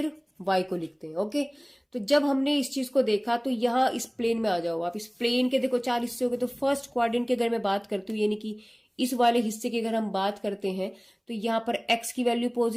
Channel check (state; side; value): identical; both; correlation 1.00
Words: वाई को लिखते हैं। ओके, तो जब हमने इस चीज को देखा, तो यहां इस प्लेन में आ जाओ आप, इस प्लेन के देखो 4 हिस्से हो गए। तो फर्स्ट क्वाड्रेंट के अगर मैं बात करती हूँ, यानी कि इस वाले हिस्से की अगर हम बात करते हैं, तो यहाँ पर एक्स की वैल्यू